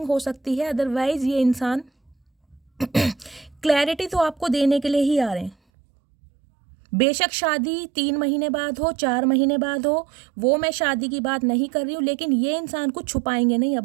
हो सकती है, अदरवाइज़ ये इंसान क्लैरिटी तो आपको देने के लिए ही आ रहे हैं। बेशक शादी 3 महीने बाद हो, 4 महीने बाद हो, वो मैं शादी की बात नहीं कर रही हूँ, लेकिन ये इंसान कुछ छुपाएंगे नहीं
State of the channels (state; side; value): drops out; left; at 5.6 s